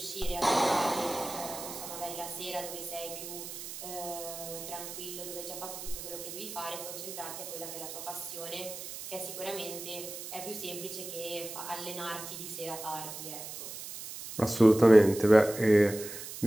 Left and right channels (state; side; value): noise; right; hiss, 10 dB below the sound